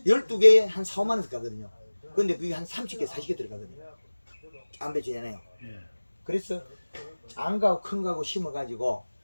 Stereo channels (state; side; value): inverted; both; correlation -1.00